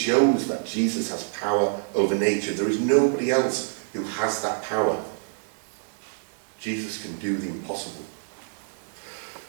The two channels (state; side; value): silent; left; digital silence